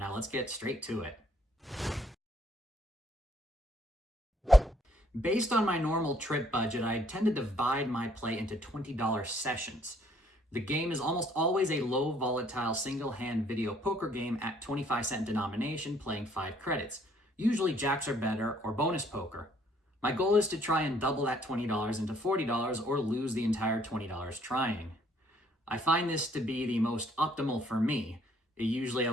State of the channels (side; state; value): both; normal; correlation 0.64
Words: let's get straight to it. Based on my normal trip budget, I tend to divide my play into $20 sessions. The game is almost always a low volatile single-hand video poker game at 25-cent denomination playing 5 credits, usually jacks or better or bonus poker. My goal is to try and double that $20 into $40 or lose the entire $20 trying. I find this to be the most optimal for me. It usually